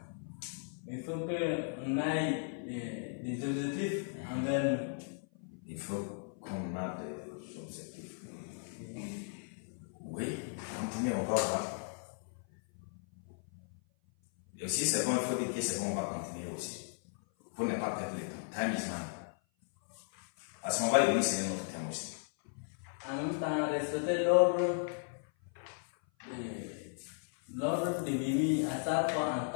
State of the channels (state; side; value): silent; right; 54 dB below the other